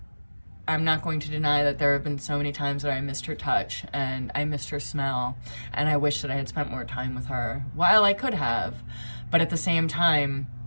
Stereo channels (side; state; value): both; inverted; correlation -1.00